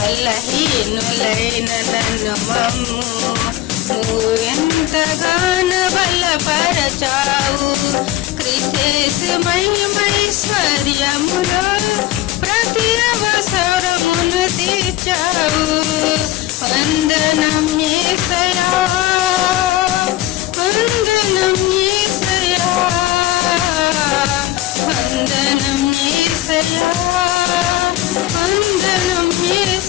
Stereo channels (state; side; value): quieter; right; 14.8 dB